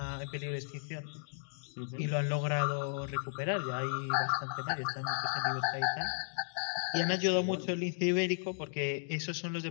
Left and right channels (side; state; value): right; silent; digital silence